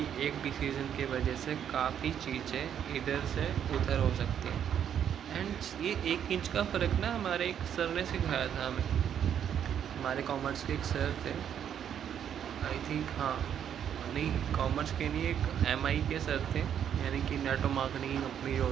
एक डिसीजन की वजह से काफ़ी चीज़ें इधर से उधर हो सकती हैं। एंड ये 1 इंच का फ़र्क ना हमारे एक सर ने सिखाया था हमें। हमारे कॉमर्स के एक सर थे, आई थिंक, हाँ, नहीं कॉमर्स के नहीं, एक एमआई के सर थे, यानी कि नेटवर्क मार्केटिंग कंपनी जो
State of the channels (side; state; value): left; quieter; 9.1 dB